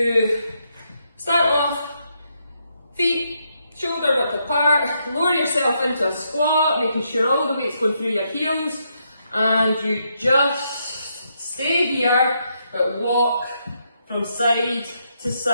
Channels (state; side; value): inverted; both; correlation -0.78